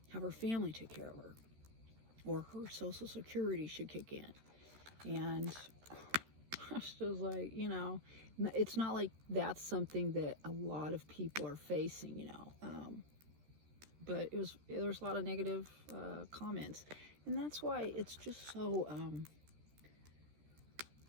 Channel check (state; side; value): late; left; 13 ms